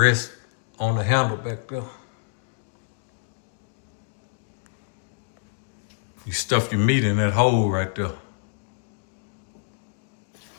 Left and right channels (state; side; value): silent; right; digital silence